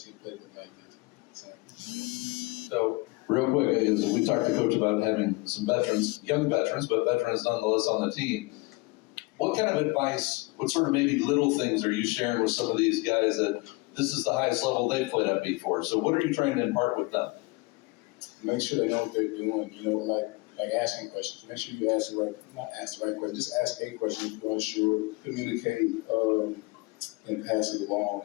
like this. So real quick, as we talked to Coach about having some veterans, young veterans, but veterans nonetheless on the team. What kind of advice, what sort of maybe little things are you sharing with some of these guys that this is the highest level they've played at before? So what are you trying to impart with them? Make sure they know what they're doing. Like asking questions. Make sure you not ask the right question. Just ask a question if you're unsure. Communicate. And pass it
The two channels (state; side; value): quieter; right; 24.6 dB